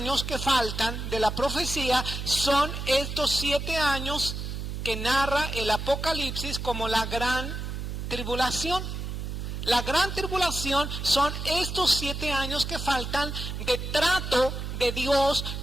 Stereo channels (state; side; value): noise; right; hum, 5 dB below the sound